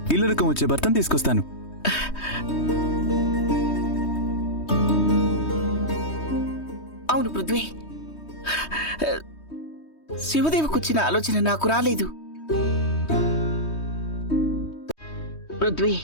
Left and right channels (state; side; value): late; right; 3.2 ms